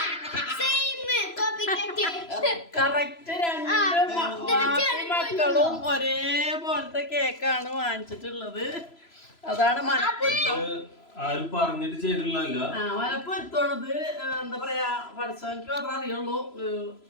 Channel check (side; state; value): right; late; 3.0 ms